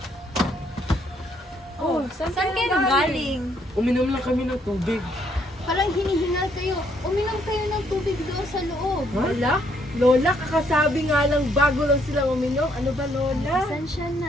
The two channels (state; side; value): normal; both; correlation 0.70